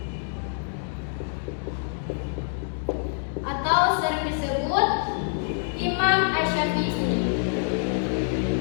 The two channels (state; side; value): silent; right; digital silence